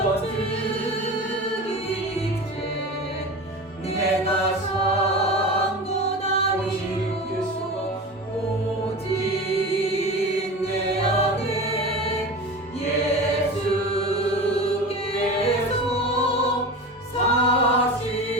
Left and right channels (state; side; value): normal; both; correlation 0.30